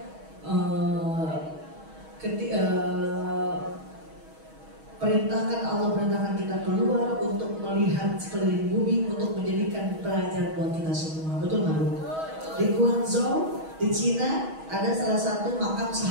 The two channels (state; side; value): late; left; 6.3 ms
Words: Allah perintahkan kita keluar untuk melihat sekeliling bumi, untuk menjadikan pelajaran buat kita semua. Betul nggak Bu? Di Guangzhou, di Cina, ada salah satu makam